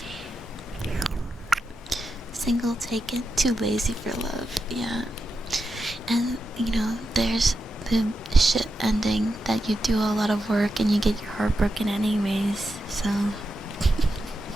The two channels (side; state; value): both; normal; correlation 0.88